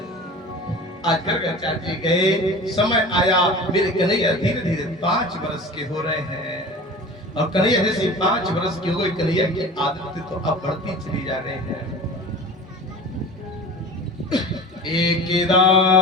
आज कर चाची गए, समय आया, मेरे कन्हैया धीरे धीरे 5 वर्ष के हो रहे हैं। और कन्हैया जैसे 5 वर्ष के हो गए, कन्हैया की आदत तो अब बढ़ती चली जा रही है।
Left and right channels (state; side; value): normal; both; correlation 0.37